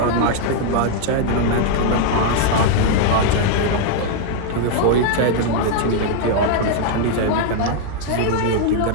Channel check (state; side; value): different; both; correlation 0.00